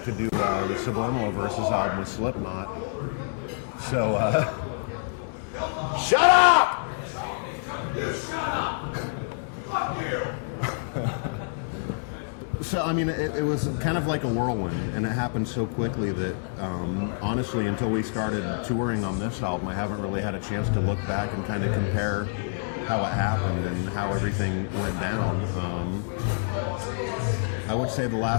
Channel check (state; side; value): silent; right; 60 dB below the other